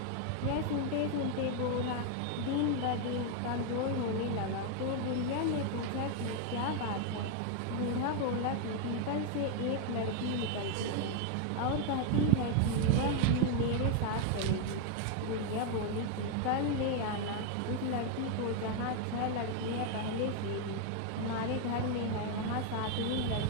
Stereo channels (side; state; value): both; different; correlation 0.01